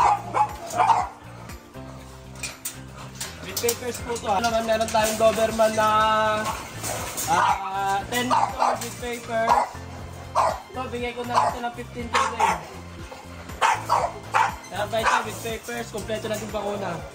With papers po ito. Naman meron tayong Doberman na 10 months old with papers. Ito bigay ko na lang ito ng 15K din. Kaya ba ito with papers, kompleto na yung bakuna.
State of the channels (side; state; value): both; identical; correlation 1.00